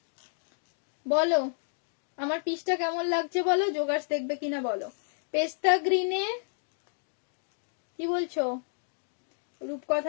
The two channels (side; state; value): right; silent; digital silence